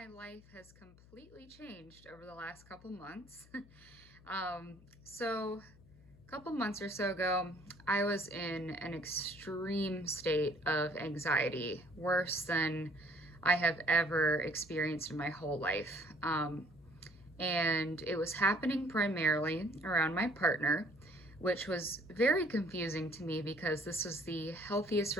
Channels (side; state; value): left; noise; hum, 24 dB below the sound